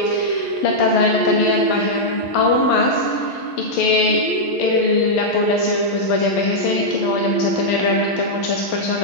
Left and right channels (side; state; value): right; late; 11 ms